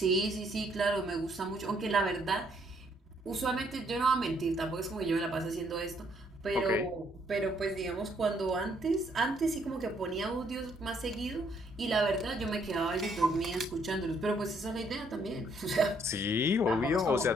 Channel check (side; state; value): both; normal; correlation 0.68